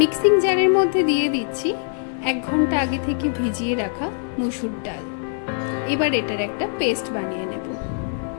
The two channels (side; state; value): right; silent; 57 dB below the other